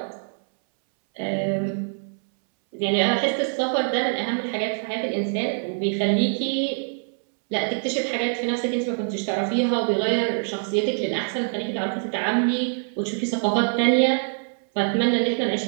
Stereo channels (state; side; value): silent; left; 62 dB below the other